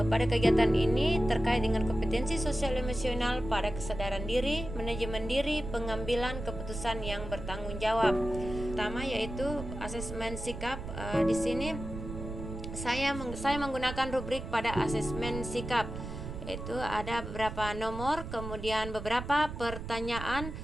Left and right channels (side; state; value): right; noise; rumble, 8 dB below the sound